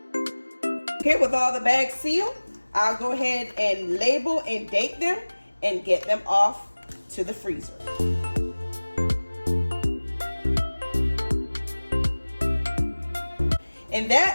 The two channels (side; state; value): both; inverted; correlation -1.00